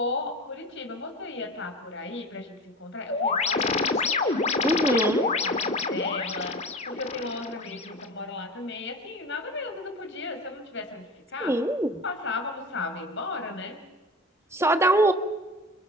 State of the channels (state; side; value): normal; both; correlation 0.31